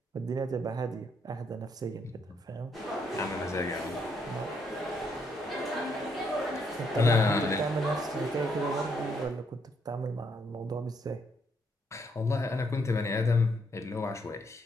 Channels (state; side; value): normal; both; correlation 0.73